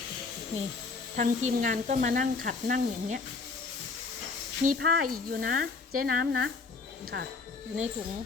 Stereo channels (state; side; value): quieter; right; 4.3 dB